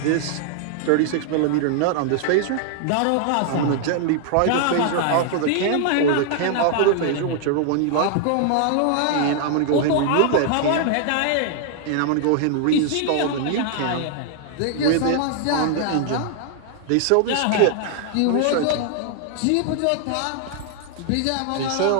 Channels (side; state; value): both; different; correlation 0.00